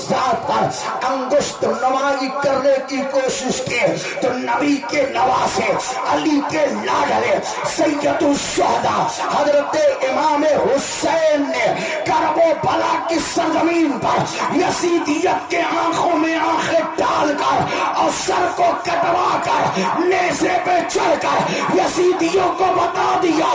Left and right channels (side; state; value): both; identical; correlation 1.00